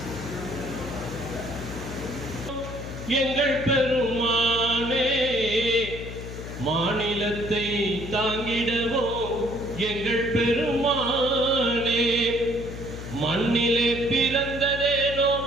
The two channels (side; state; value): left; noise; hum, 9 dB below the sound